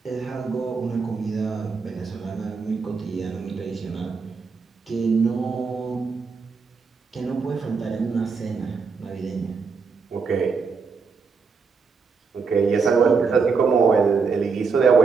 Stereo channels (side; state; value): left; quieter; 5.0 dB